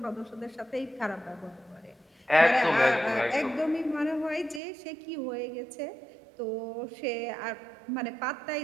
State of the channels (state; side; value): drops out; left; at 4.6 s